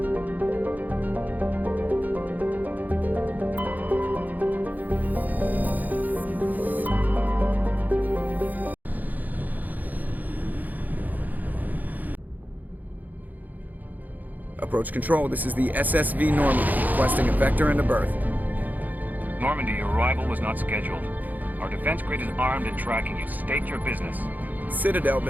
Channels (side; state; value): left; late; 0.082 ms